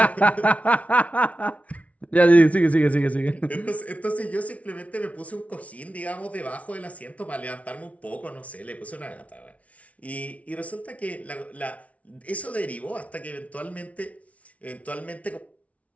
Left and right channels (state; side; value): late; right; 0.066 ms